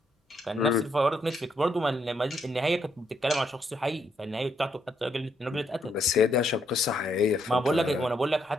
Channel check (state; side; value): normal; both; correlation 0.75